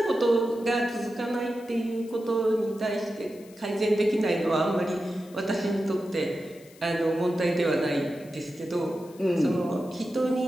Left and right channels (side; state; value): left; noise; hiss, 25 dB below the sound